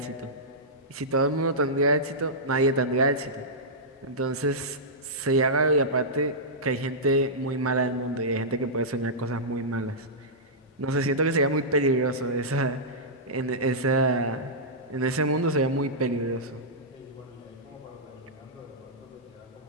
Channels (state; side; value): normal; both; correlation -0.13